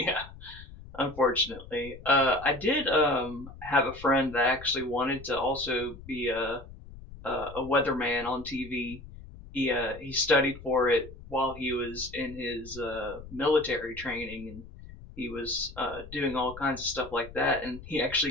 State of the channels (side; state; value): left; noise; rumble, 16 dB below the sound